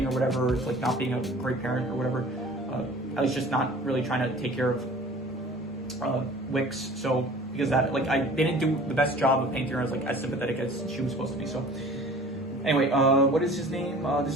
or whatever, it's like not being a great parent or whatever, at least just not really trying to take care of Wicks. So because that like they didn't do the best job of painting her as like as sympathetic as she was supposed to be. So anyway, what is his name?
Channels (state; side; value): normal; both; correlation 0.45